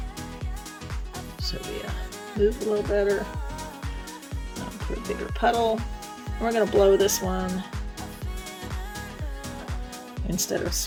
So we move a little better. Put a bigger puddle. And we're going to blow this one instead of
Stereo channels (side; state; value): both; identical; correlation 1.00